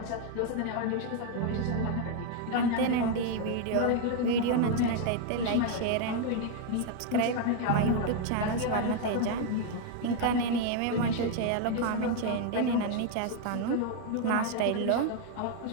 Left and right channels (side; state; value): both; different; correlation 0.01